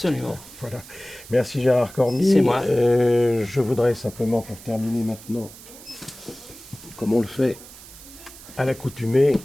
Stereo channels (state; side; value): noise; right; hiss, 18 dB below the sound